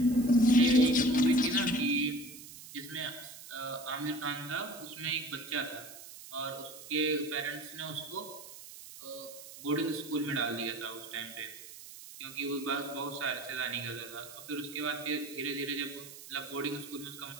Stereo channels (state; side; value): noise; right; hiss, 15 dB below the sound